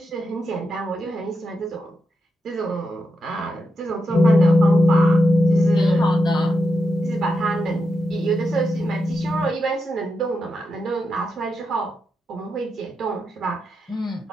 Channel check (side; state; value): both; normal; correlation 0.86